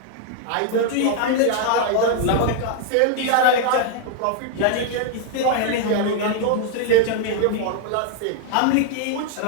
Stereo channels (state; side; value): different; both; correlation 0.00